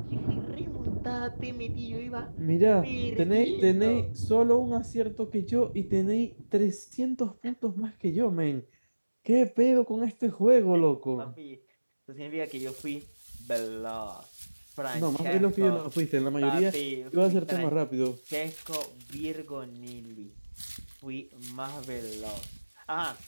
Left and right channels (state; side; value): inverted; both; correlation -1.00